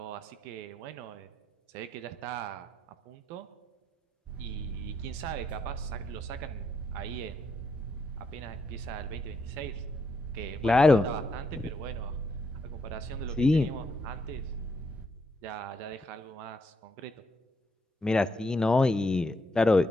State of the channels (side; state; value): both; normal; correlation 0.77